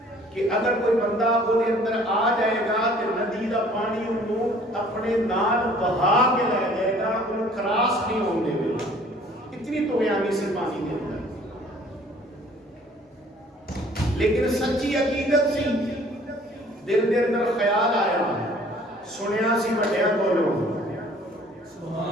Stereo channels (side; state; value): both; normal; correlation 0.54